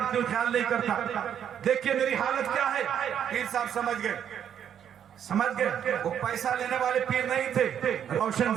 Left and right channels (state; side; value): quieter; left; 9.1 dB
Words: हूँ, ख्याल नहीं करता, देखिए मेरी हालत क्या है। पीर साहब समझ गए वो पैसा लेने वाले पीर नहीं थे, रोशन